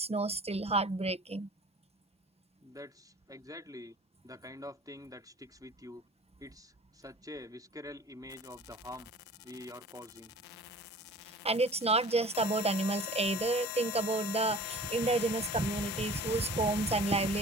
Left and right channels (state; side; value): normal; both; correlation 0.44